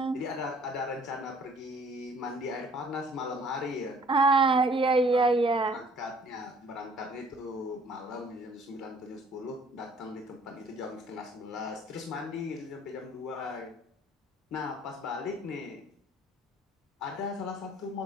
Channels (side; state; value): both; normal; correlation 0.56